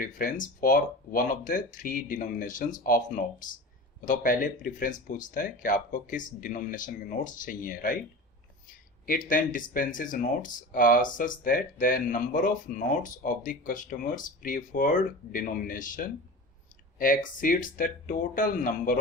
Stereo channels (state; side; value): normal; both; correlation 0.32